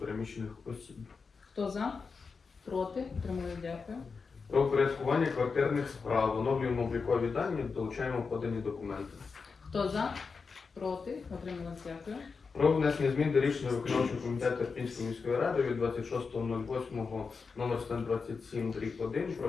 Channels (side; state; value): right; quieter; 5.0 dB